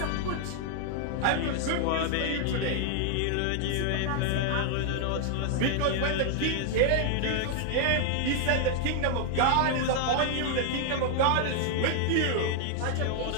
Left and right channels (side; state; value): both; different; correlation 0.00